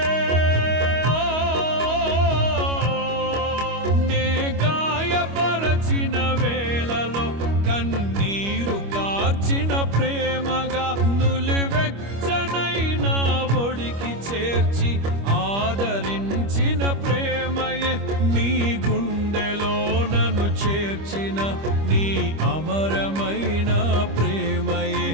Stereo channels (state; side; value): late; left; 25 ms